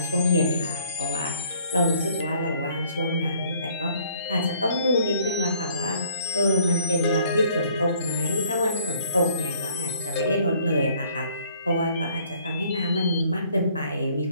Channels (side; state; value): both; inverted; correlation -0.61